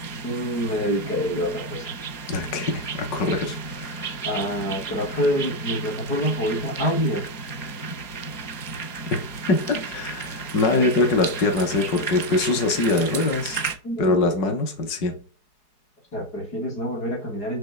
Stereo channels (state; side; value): late; right; 4.8 ms